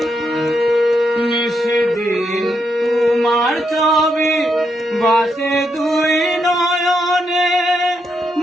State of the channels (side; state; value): both; normal; correlation 0.80